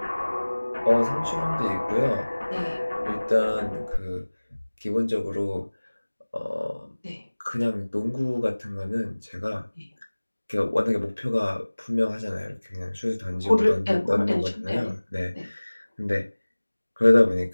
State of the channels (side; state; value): both; inverted; correlation -1.00